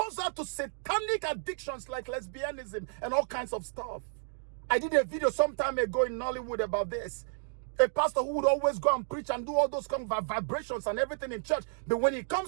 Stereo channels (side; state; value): left; silent; digital silence